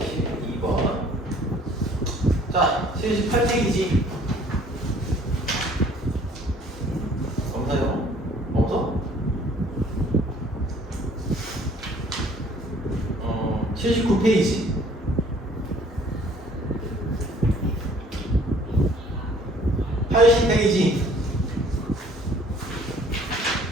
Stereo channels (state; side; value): normal; both; correlation 0.56